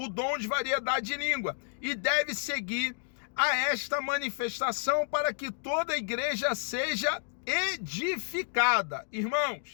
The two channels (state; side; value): silent; right; digital silence